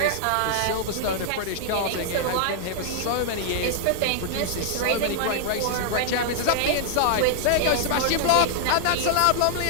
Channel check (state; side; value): different; both; correlation -0.01